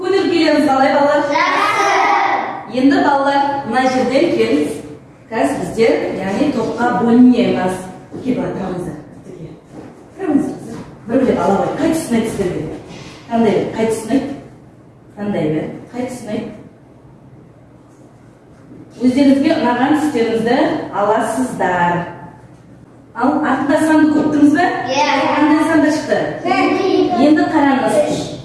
келеміз қалай балалар? Енді балалар мына жерден келіңіз. Қазір біздер, яғни топқа бөлінеміз. Келіп тұрамыздар. Тұрамыздар. Бір-бірлеп ала қой. Қай тұсын айтсыздар бе? Қандай бе? Қай тұсын айт? Қандай бе? Қай тұсын айт? Өздеріңізге ұнаған түстеріңізді аласыздар. Ал артында санды көптіңіз бе? Қандай санда шықты? Енді қараңыз.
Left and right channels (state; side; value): identical; both; correlation 1.00